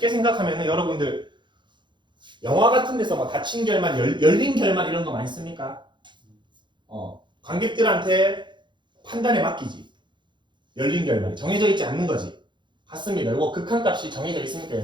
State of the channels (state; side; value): late; left; 0.23 ms